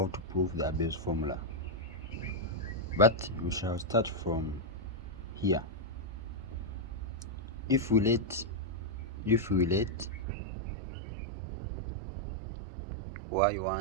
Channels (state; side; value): drops out; left; at 10.2 s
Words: to prove the ABEL'S formula, but we shall start from here. If we let